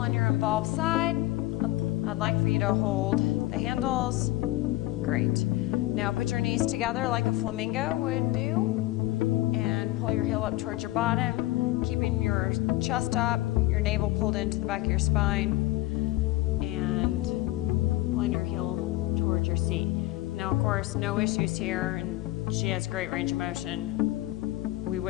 your involved side. I'd like for you to hold the handles. Great. Now put your knees together like a flamingo would do, and pull your heel up towards your bottom, keeping your chest up, your navel pulled into the back of your spine, and pulling your heel towards your seat. Now, of course, no issues here, and she has great range of motion. We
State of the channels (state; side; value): quieter; right; 17.7 dB